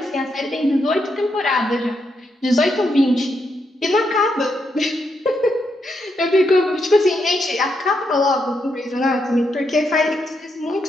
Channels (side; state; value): both; normal; correlation 0.80